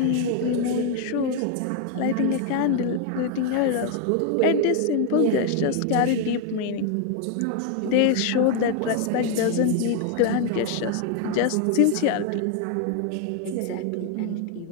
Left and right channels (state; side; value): different; both; correlation 0.00